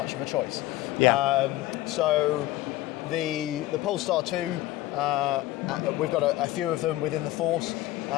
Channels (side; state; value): right; quieter; 16.4 dB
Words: of a choice. Yeah. So the Polestar 2, we've got a few of them within the force.